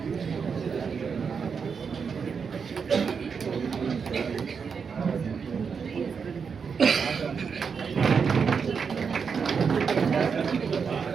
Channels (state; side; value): quieter; left; 6.0 dB